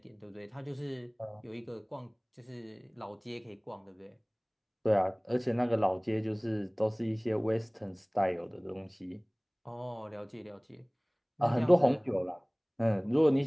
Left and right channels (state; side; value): identical; both; correlation 1.00